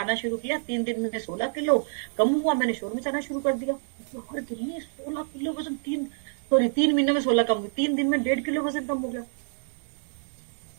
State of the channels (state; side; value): silent; left; digital silence